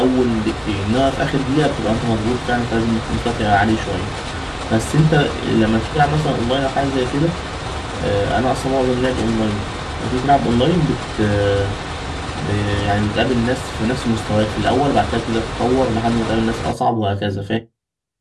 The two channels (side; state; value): both; identical; correlation 1.00